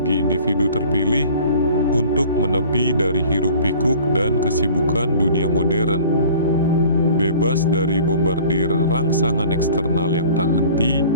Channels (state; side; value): inverted; both; correlation -0.47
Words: individu terpilih untuk menepi dari hiruk-pikuk dan kesibukan dunia modern. Bebas dari bombardir rangsangan eksternal yang tak henti,